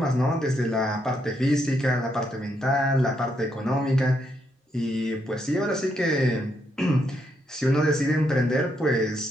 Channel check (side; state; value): both; normal; correlation 0.77